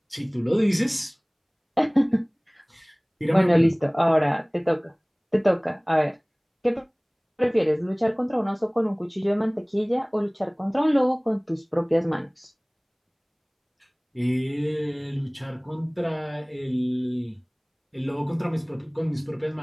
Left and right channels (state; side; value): identical; both; correlation 1.00